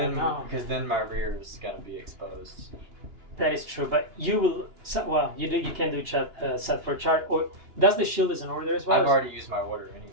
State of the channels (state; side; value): late; left; 2.9 ms